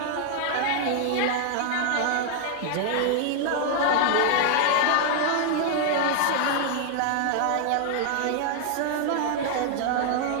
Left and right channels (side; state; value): both; different; correlation 0.00